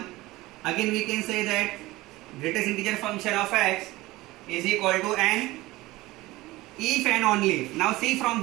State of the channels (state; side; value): quieter; left; 19.2 dB